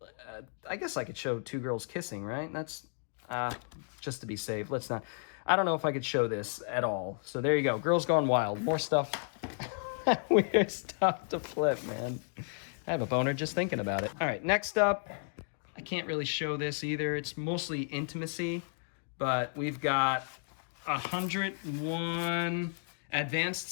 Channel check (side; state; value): right; silent; 56 dB below the other